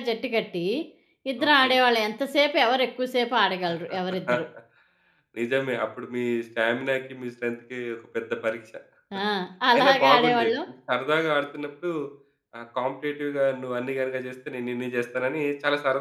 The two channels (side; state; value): both; identical; correlation 1.00